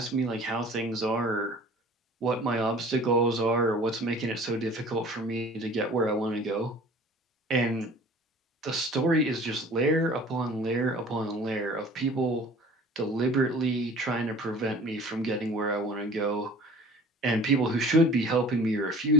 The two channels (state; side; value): normal; both; correlation 0.46